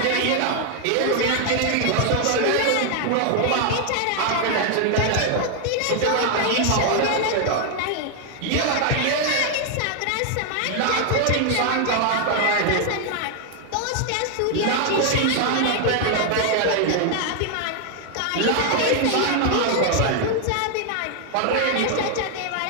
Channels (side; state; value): both; different; correlation 0.00